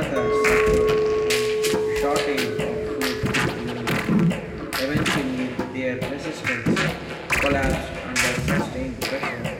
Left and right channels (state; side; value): identical; both; correlation 1.00